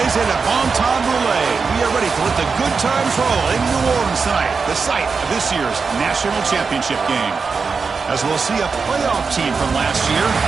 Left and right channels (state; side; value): quieter; left; 5.0 dB